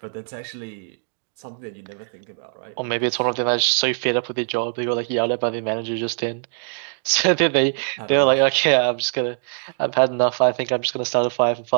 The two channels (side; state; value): left; silent; digital silence